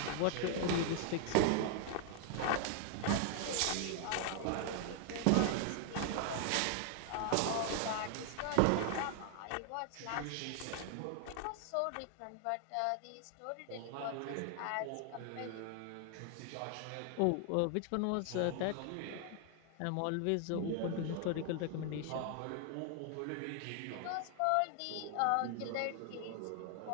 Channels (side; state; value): both; different; correlation 0.00